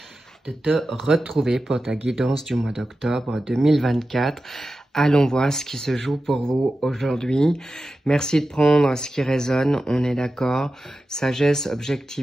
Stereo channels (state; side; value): normal; both; correlation 0.93